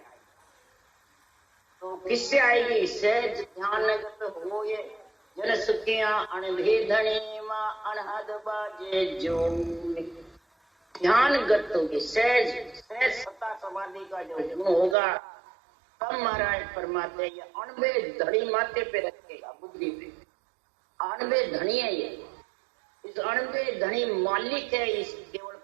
तो किससे आएगी? सहज ध्यानगत हो ये जन सुखिया अनभेदनी मां अनहद बाजे जो। ध्यानगत होगी, सहज सहज सत्ता समाधि का जो गुण होगा, तब महाराज फरमाते हैं ये अणबे धड़ी माथे पे रखेगा, बुद्धि पे। अणबे धनी है ये, इस अणबे धनी मालिक है इस केवल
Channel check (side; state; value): left; drops out; at 15.0 s